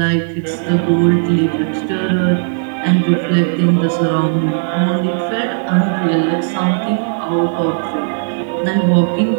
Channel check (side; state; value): left; silent; digital silence